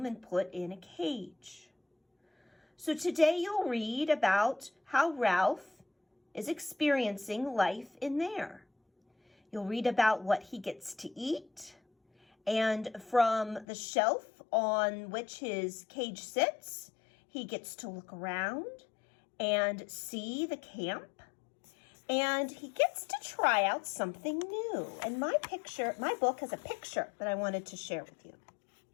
and put in a cage. So today you'll read about how Ralph is experiencing life in there. You'll read about what he gets to eat, and from the shelf on which his cage sits, he gets to look around and see the camp. And he gets to try out something new. And my book has a picture that I wanted to share with you.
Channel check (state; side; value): drops out; right; at 13.7 s